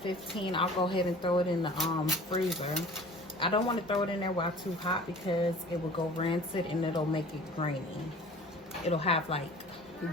I'll go ahead and throw it in the freezer. I don't want to throw it in there while too hot because it will go rancid and it'll make it grainy. It'll have like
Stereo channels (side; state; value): both; normal; correlation 0.45